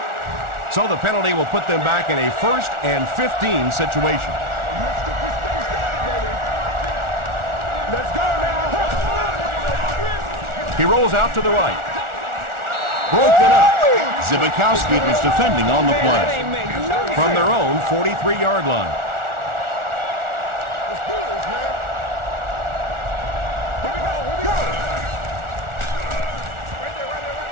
So the penalty will put them back in a 1st and 15 situation. He rolls out to the right. Broken up. Zibikowski was defending on the play. From their own 43-yard line.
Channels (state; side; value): late; left; 1.4 ms